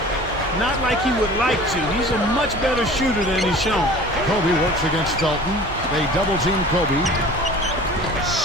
Not like he would like to. He's a much better shooter than he's shown. Kobe works against Felton. They double team Kobe.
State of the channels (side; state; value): both; normal; correlation 0.43